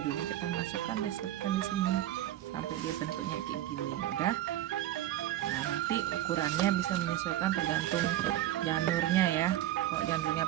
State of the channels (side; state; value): left; quieter; 13.5 dB